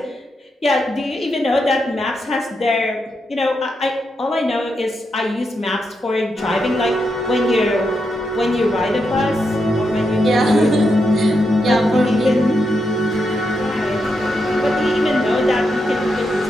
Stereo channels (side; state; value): both; normal; correlation 0.83